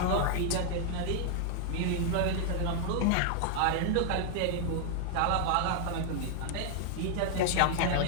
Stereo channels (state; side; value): different; both; correlation -0.01